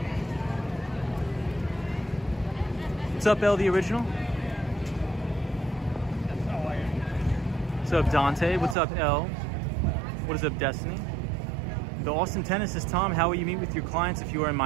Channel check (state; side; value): drops out; left; at 8.8 s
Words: What's up, L, the original? What's up, Dante? What's up, L? What is up, Destiny? The Austin tennis says, Tom, how will you meet with your clients if you are in